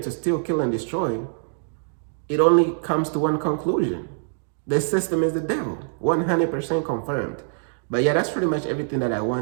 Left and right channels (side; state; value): left; silent; digital silence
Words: steal, kill, and destroy, it only comes to one conclusion. The system is the devil. 100% confirmed. But yeah, that's pretty much everything that I